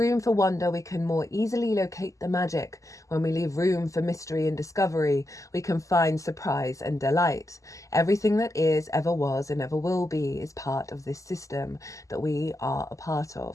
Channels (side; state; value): right; late; 0.16 ms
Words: for wonder, we can more easily locate the magic. When we leave room for mystery and discovery, we can find surprise and delight. Everything that is, ever was, and ever will be is part of this system that we are a part